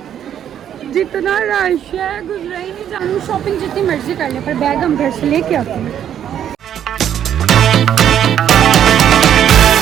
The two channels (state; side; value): quieter; left; 9.8 dB